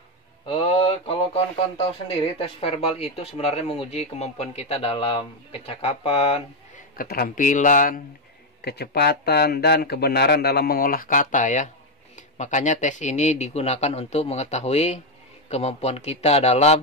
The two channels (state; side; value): normal; both; correlation 0.05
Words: Kalau kawan-kawan tahu sendiri, tes verbal itu sebenarnya menguji kemampuan kita dalam kecakapan, keterampilan, kecepatan, dan kebenaran dalam mengolah kata ya. Makanya tes ini digunakan untuk mengetahui kemampuan kita